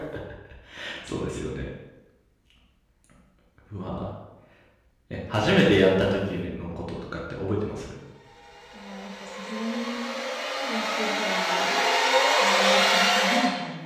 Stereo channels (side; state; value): both; identical; correlation 1.00